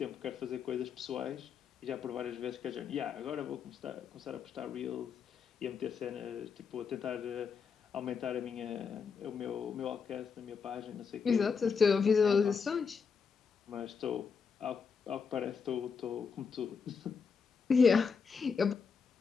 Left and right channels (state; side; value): quieter; right; 5.9 dB